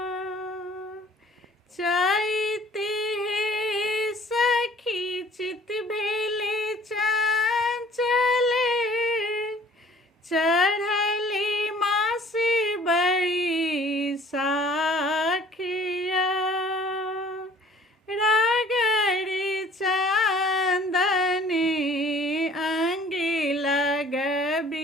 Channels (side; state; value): both; normal; correlation 0.52